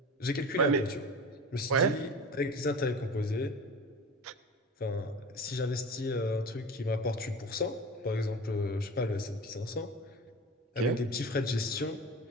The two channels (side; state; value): both; normal; correlation 0.34